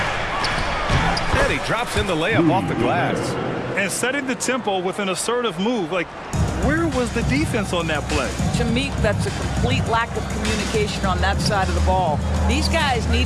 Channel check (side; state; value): both; identical; correlation 1.00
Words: And he drops in the layup off the glass. And setting the tempo with an assertive move. Like, where was the defense on that play? To me, that's a complete lack of communication on that side of the ball. These guys